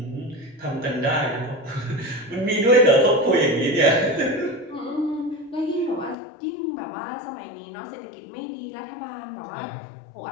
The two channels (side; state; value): right; drops out; at 6.2 s